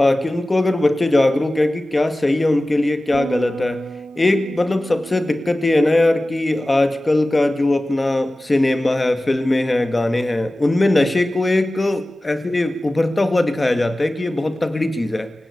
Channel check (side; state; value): both; normal; correlation 0.96